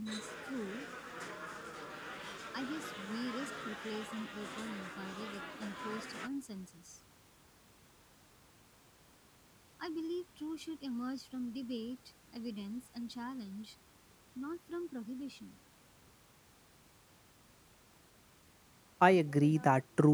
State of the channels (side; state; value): both; identical; correlation 1.00